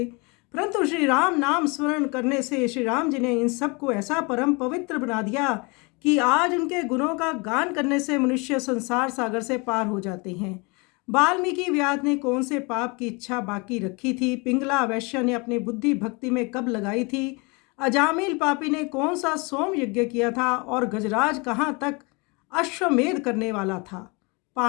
परंतु श्री राम नाम स्मरण करने से श्री राम जी ने इन सब को ऐसा परम पवित्र बना दिया कि आज उनके गुणों का गान करने से मनुष्य संसार सागर से पार हो जाते हैं। वाल्मीकि व्यास ने कौन से पाप की इच्छा बाकी रखी थी? पिंगला वैश्य ने अपनी बुद्धि भक्ति में कब लगाई थी? अजामिल पापी ने कौन सा सोम यज्ञ किया था? और गजराज कहाँ तक अश्वमेध करने वाला था?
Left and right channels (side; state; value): right; quieter; 29.0 dB